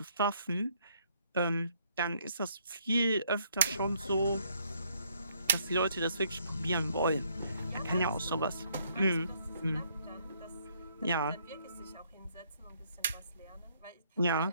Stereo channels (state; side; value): inverted; both; correlation -0.68